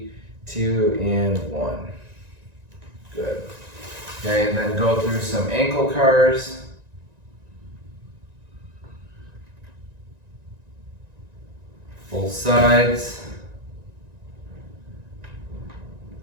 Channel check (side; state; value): left; late; 1.9 ms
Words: 2, and 1. Good. Okay, and then go through some ankle cars. Both sides.